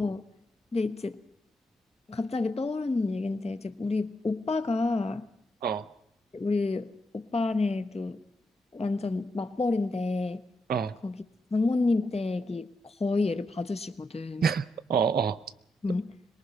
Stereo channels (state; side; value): normal; both; correlation 0.82